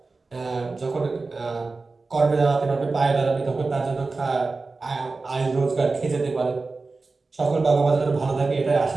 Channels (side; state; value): left; quieter; 3.8 dB